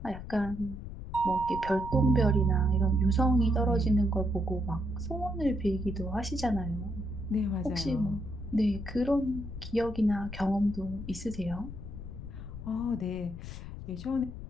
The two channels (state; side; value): noise; left; rumble, 10 dB below the sound